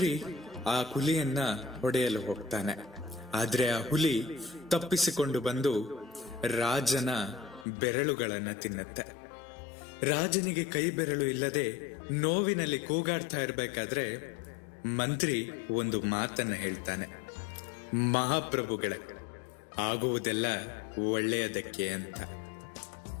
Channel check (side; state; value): right; drops out; at 7.7 s